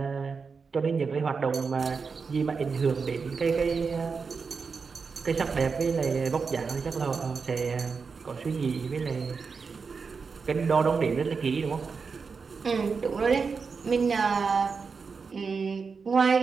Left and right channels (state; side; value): quieter; left; 5.2 dB